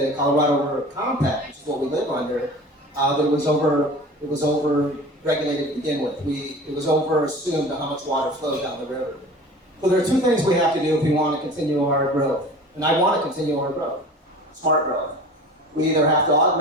Colorado River Compact, which is what we live under, that it was over regulated to begin with. It was over assumed how much water flowed down the river. So there are two things we have to do if we want to continue our growth. And I want to continue our growth, smart growth. We either have to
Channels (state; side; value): normal; both; correlation 0.39